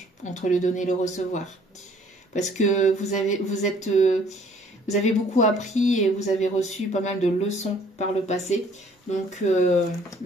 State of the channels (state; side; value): normal; both; correlation 0.58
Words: entre le donner et le recevoir. Parce que vous avez beaucoup appris et vous avez reçu pas mal de leçons par le passé. Donc